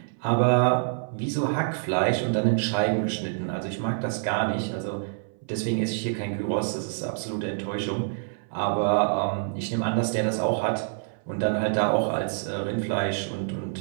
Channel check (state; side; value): silent; left; 60 dB below the other